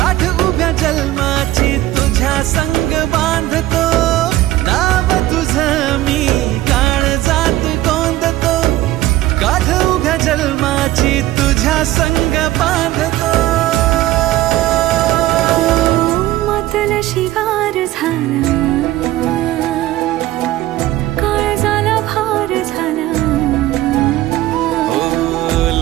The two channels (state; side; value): quieter; left; 15.6 dB